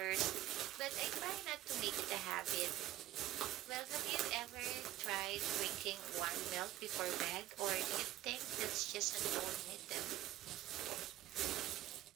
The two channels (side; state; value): left; quieter; 14.2 dB